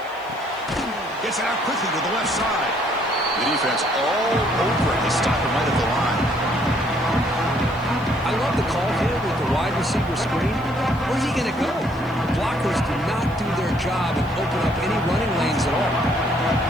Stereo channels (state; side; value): noise; right; hiss, 27 dB below the sound